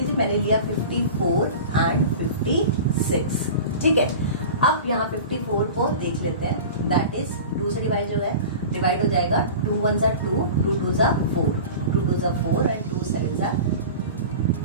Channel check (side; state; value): both; inverted; correlation -0.35